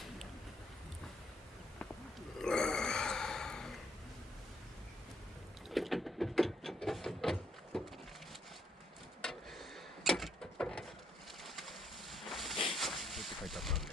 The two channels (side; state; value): both; normal; correlation 0.70